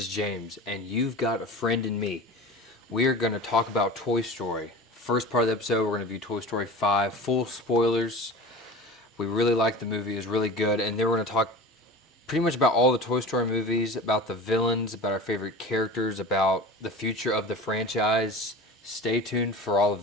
James, and you've got a friend in me. We are going to talk about Toy Story. First part of the episode, we're going to view Toy Story 5, full spoilers. We really liked the movie, it was really good, and then we're going to talk pretty much about all the Toy Story movies, about the villains, about our favorite characters, about the future of the franchise. Stay tuned for all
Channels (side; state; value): both; normal; correlation 0.34